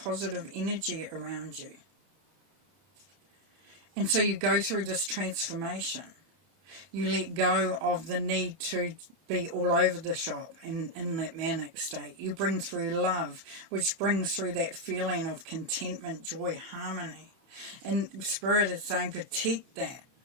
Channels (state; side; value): late; left; 31 ms